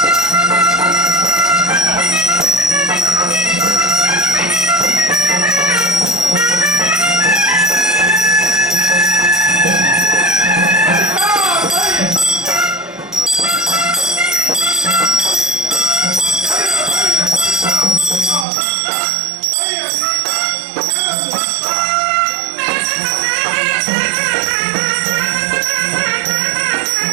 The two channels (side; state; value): left; drops out; at 18.4 s